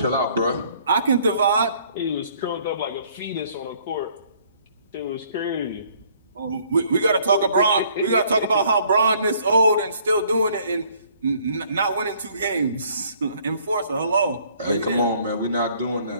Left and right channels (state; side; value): inverted; both; correlation -0.61